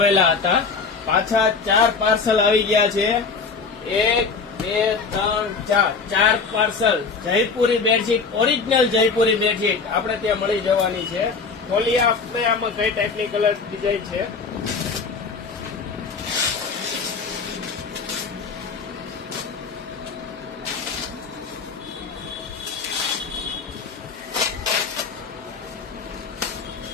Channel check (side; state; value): right; quieter; 4.9 dB